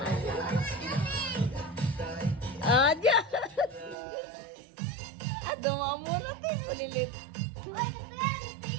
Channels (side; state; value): left; drops out; at 4.0 s